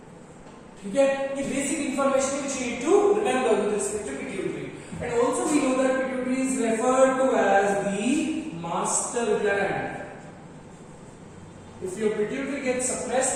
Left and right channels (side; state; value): both; identical; correlation 1.00